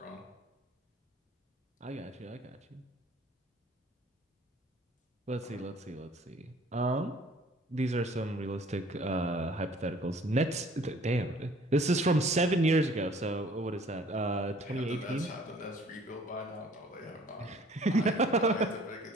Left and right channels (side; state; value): both; normal; correlation 0.54